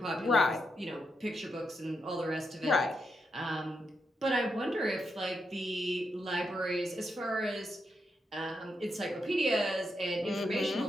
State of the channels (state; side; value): normal; both; correlation 0.83